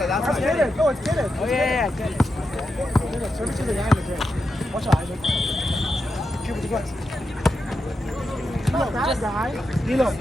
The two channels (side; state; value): both; normal; correlation 0.87